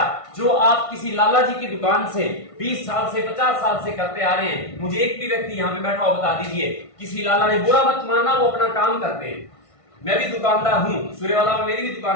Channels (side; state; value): right; late; 1.5 ms